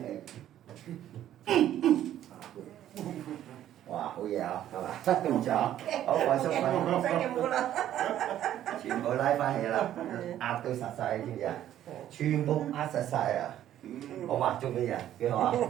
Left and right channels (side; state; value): left; quieter; 11.8 dB